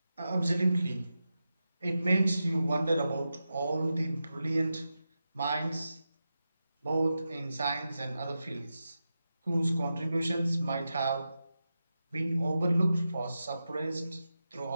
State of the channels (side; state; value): both; inverted; correlation -0.91